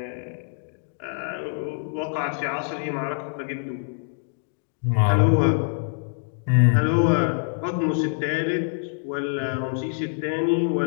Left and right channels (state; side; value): silent; right; digital silence